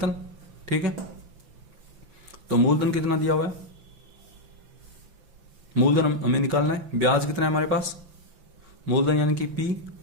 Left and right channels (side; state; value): left; late; 5.8 ms